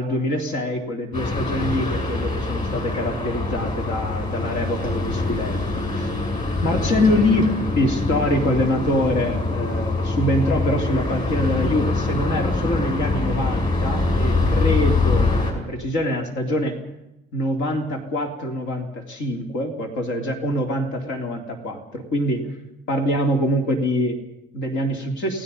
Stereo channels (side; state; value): both; normal; correlation 0.58